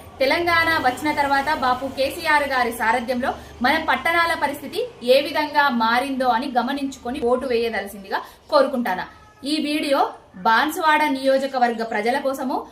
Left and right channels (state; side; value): identical; both; correlation 1.00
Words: తెలంగాణ వచ్చిన తర్వాత బాపు కేసీఆర్ గారి సారథ్యంలో మన పట్టణాల పరిస్థితి ఏ విధంగా మారిందో అని గమనించుకొని ఓటు వేయదలసిందిగా కోరుకుంటాను. ఈ వీడియో బాన్సువాడ నియోజకవర్గ ప్రజల కోసము